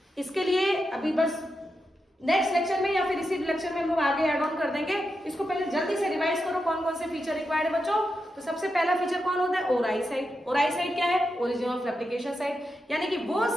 इसके लिए अभी बस नेक्स्ट लेक्चर में या फिर इसी लेक्चर में हम लोग आगे ऐड ऑन कर देंगे। इसको पहले जल्दी से रिवाइज करो कौन कौन से फीचर रिक्वायर्ड है बच्चों। तो सबसे पहला फीचर कौन होता है? ओराई साइट। ओराई साइट क्या है? ओरिजिन ऑफ रेप्लिकेशन साइट, यानी कि वो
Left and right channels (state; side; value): normal; both; correlation 0.87